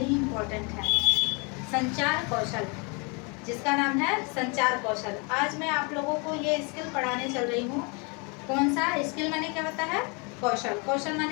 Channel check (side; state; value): right; quieter; 32.5 dB